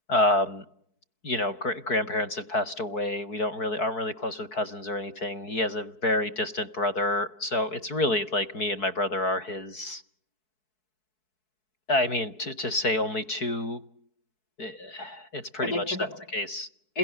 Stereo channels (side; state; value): right; late; 4.6 ms